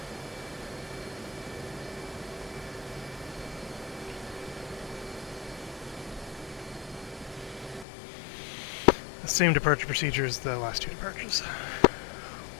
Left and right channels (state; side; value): drops out; right; at 7.9 s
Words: The same departure procedure as the last 2 departures.